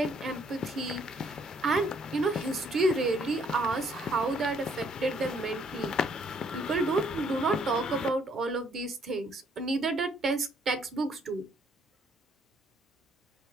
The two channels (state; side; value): normal; both; correlation 0.66